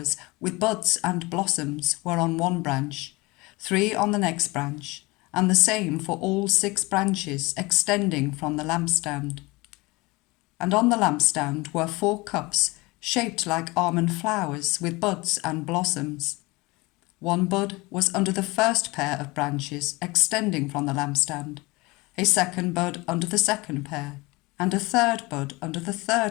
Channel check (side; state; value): right; quieter; 23.5 dB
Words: with buds and blossoms were on one branch, 3 on the next branch, and the same for all 6 branches extending from the lampstand. And on the lampstand were 4 cups shaped like almond flowers with buds and blossoms. 1 bud was under the first pair of branches extending from the lampstand, a 2nd bud under the 2nd pair, and a 3rd bud under the